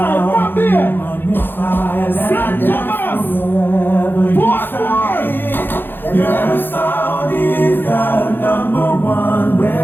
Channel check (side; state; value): right; late; 0.099 ms